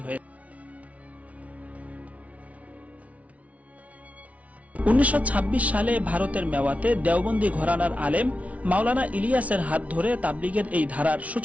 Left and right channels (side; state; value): left; late; 0.067 ms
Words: হয়েছে। 1926 সালে ভারতের মেওয়াতে দেওবন্দি ঘরানার আলেম মাওলানা ইলিয়াসের হাত ধরে তাবলিগের এই ধারার